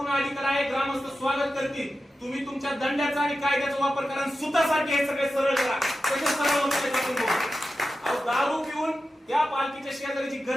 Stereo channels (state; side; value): normal; both; correlation 0.92